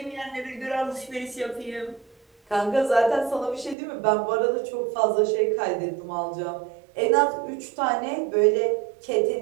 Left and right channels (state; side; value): drops out; left; at 3.8 s